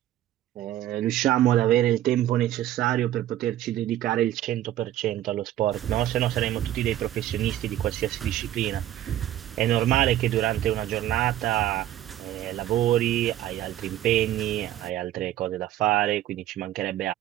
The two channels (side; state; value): left; quieter; 12.9 dB